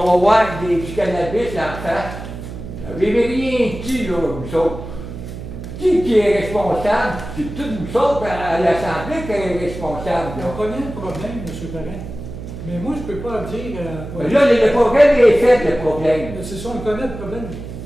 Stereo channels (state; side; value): noise; right; hum, 10 dB below the sound